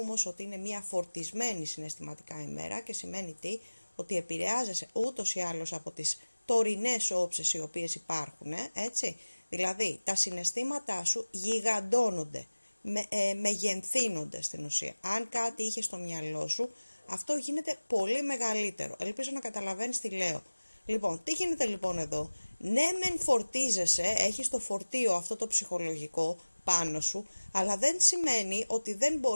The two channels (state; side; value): inverted; both; correlation -1.00